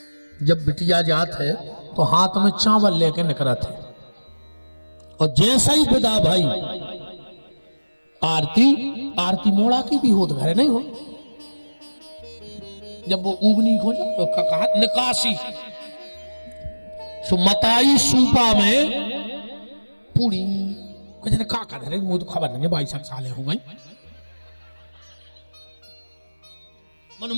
जब बिटिया जात है तो हाथ में चावल लेके निकलत है, और जैसा ही विदा भाई आरती मोड़ा की भी होत घरे नहीं हो। जब वो उबनी हो जाए तो कहा निकासी सुमताई सूपा में पूरी कहते का कर रहे, मुझे तो खबर नहीं, 22 साल हो गई।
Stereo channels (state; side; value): inverted; both; correlation -1.00